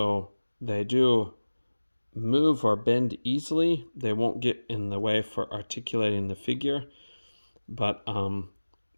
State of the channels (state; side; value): inverted; both; correlation -1.00